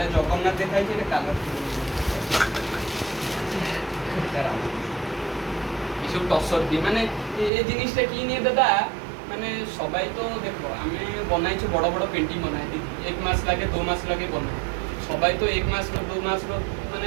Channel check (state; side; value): drops out; left; at 7.5 s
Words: জগন্নাথ দেখাইছে এটা কালার এসব টসর দিয়ে মানে এই জিনিসটা কি নিয়ে দাদা মানে সবাই তো দেখো আমি বনাইছি বড় বড় পেন্টিং বনাই দিই 1 মাস লাগে 2 মাস লাগে বনাই সবাই তো 1 মাস में 2 मास में